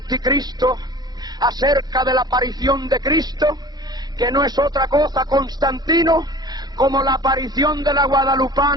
acerca de la aparición de Cristo, que no es otra cosa, Constantino, como la aparición de la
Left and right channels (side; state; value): left; late; 0.20 ms